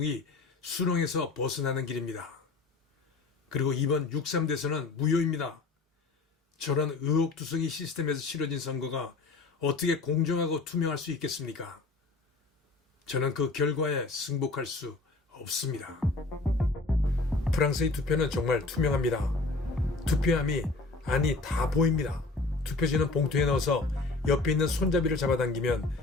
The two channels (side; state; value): right; quieter; 3.6 dB